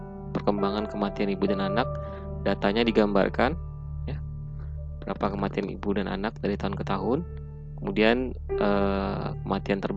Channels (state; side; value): identical; both; correlation 1.00